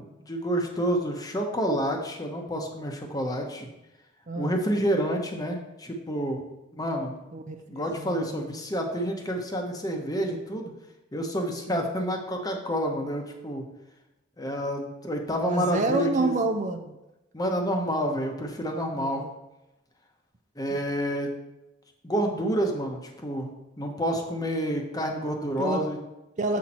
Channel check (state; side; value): normal; both; correlation 0.45